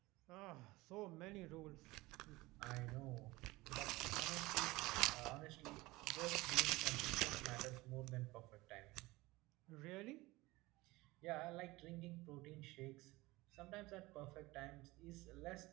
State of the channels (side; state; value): left; quieter; 20.7 dB